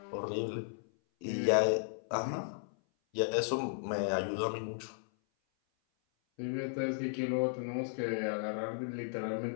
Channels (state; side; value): silent; right; 54 dB below the other